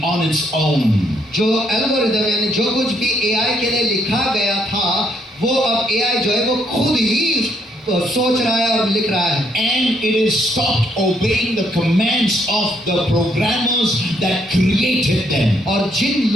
on its own. जो एल्गोरिथम यानी जो कुछ भी AI के लिए लिखा गया था वो अब AI जो है वो खुद ही सोच रहा है और लिख रहा है। And it is stopped obeying the commands of the programmers that created them. और जिन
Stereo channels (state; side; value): normal; both; correlation 0.72